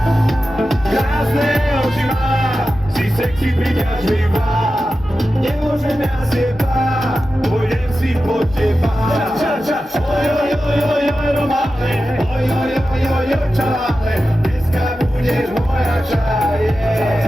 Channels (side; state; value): both; normal; correlation 0.92